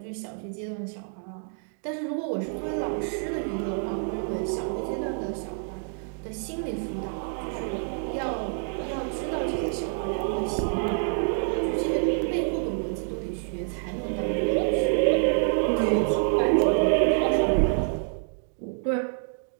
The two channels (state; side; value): silent; left; 60 dB below the other